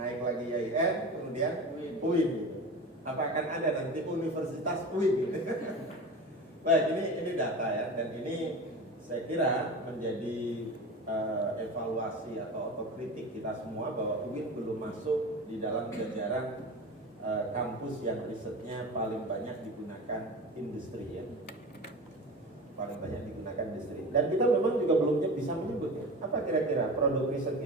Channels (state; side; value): normal; both; correlation 0.31